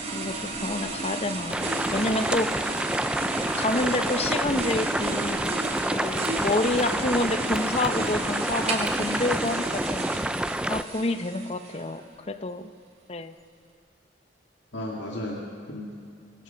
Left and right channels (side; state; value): both; normal; correlation 0.53